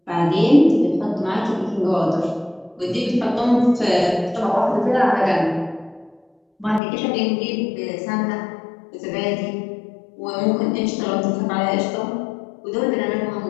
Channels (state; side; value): drops out; right; at 6.8 s